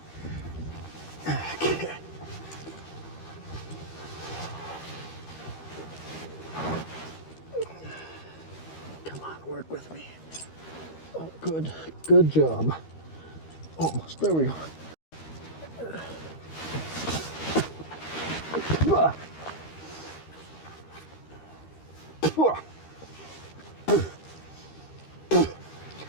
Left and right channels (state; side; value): late; right; 13 ms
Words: Okay. Come on, work with me. Oh, good. Good job. Almost. There we go.